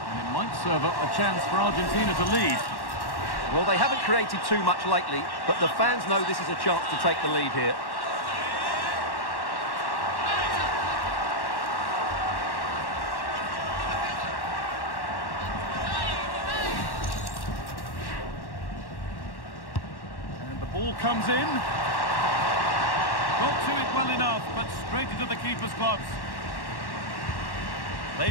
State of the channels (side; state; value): right; late; 1.1 ms